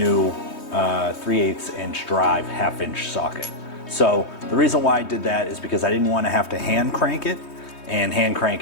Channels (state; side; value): late; right; 3.2 ms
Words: 3/8 inch drive 1/2 inch socket. So the reason why I did that is because I didn't want to have to hand crank it, and hand